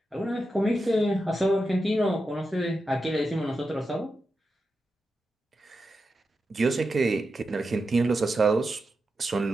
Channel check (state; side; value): normal; both; correlation 0.89